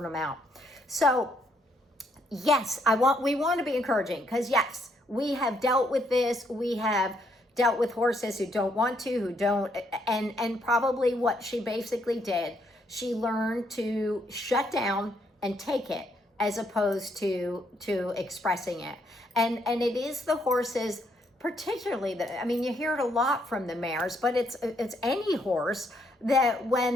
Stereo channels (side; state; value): both; normal; correlation 0.72